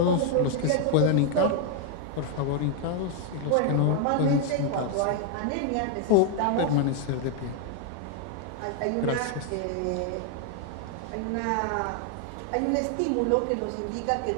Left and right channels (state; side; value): different; both; correlation 0.00